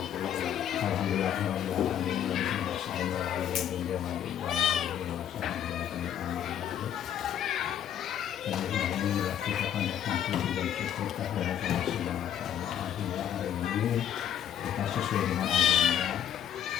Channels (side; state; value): right; quieter; 10.0 dB